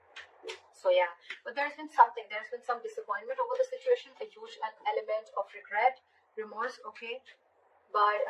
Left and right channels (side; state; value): both; identical; correlation 1.00